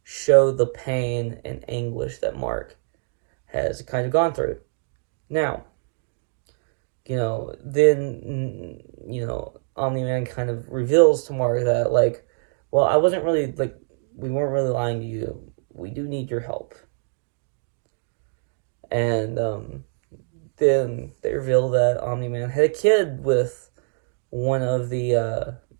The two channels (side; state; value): left; silent; digital silence